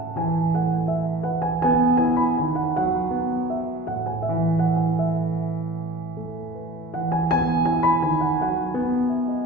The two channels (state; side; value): normal; both; correlation 0.42